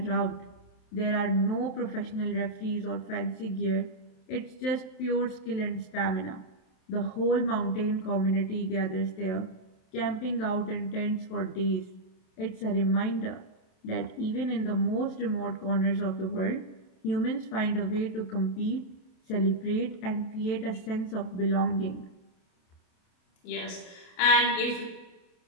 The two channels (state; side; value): late; right; 27 ms